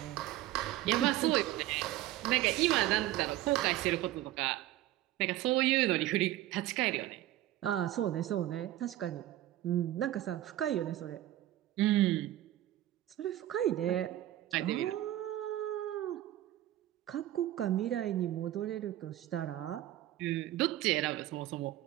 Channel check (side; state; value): left; quieter; 14.4 dB